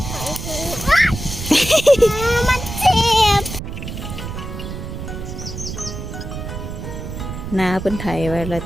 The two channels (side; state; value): right; noise; rumble, 8 dB below the sound